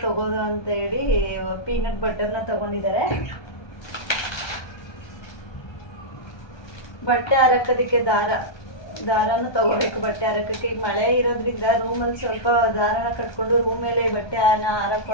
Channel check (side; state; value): right; late; 1.2 ms